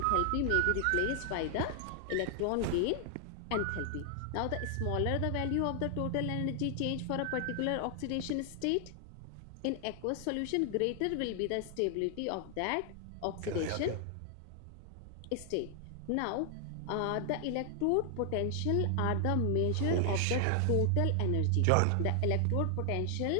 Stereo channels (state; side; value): different; both; correlation 0.00